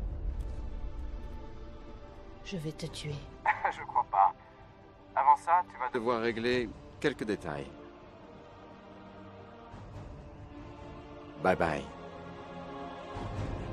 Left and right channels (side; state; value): both; identical; correlation 1.00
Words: Je vais te tuer. Je crois pas. Avant ça, tu vas devoir régler quelques détails. Bye bye.